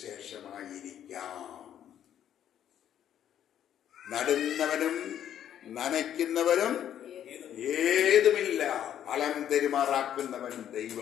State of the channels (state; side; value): quieter; right; 10.3 dB